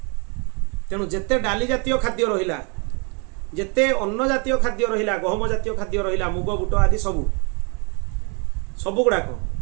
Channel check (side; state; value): left; quieter; 33.9 dB